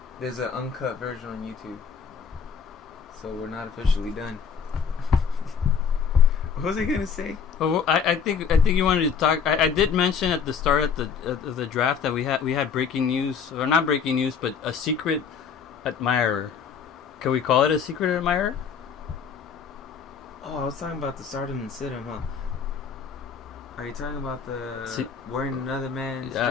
There's an uncut version on YouTube. So we're not officially done. What was I gonna say? Well, I think you wanted to talk. I did mention at the start of the draft that we had breaking news, or not breaking news, but a secret admirer. Can we call it a secret admirer? Oh, I was talking about the Stardom and Sit 'em, huh? Are you talking about the wearing another man's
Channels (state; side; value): quieter; right; 6.6 dB